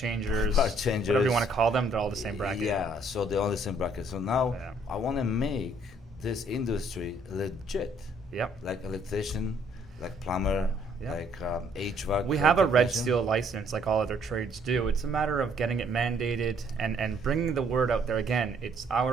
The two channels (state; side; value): normal; both; correlation 0.64